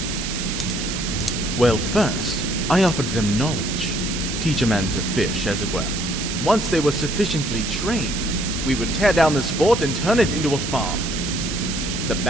Well, first, I offered them knowledge. Teach a man to fish, as it were. Once they were sufficiently trained, we would tear down this fort and turn it into a farm. The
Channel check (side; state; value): right; noise; hiss, 5 dB below the sound